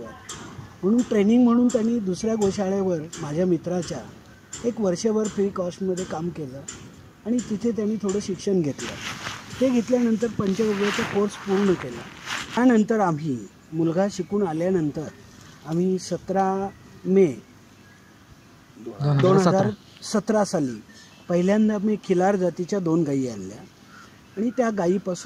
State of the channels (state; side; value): identical; both; correlation 1.00